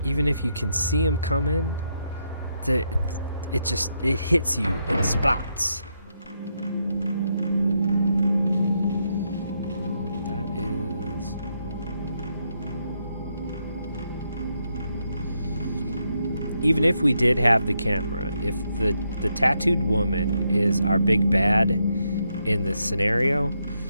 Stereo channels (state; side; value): inverted; both; correlation -0.80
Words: even if you can see them coming, it hits you in spots. That is... Even if we did have the camera, if the tattooed woman is our big bad in this scenario,